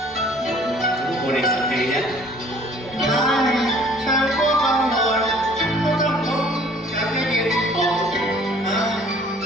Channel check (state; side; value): normal; both; correlation 0.54